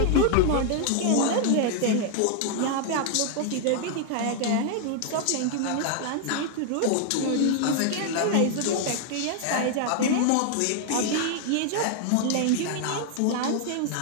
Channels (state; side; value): different; both; correlation 0.00